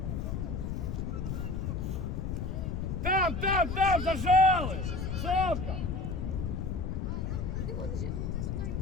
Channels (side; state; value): left; noise; rumble, 2 dB below the sound